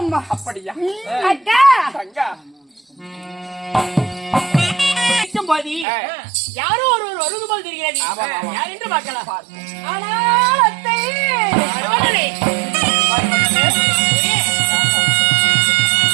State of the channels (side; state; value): left; drops out; at 5.9 s